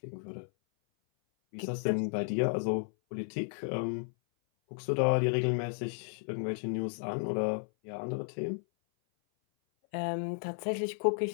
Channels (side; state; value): right; silent; 56 dB below the other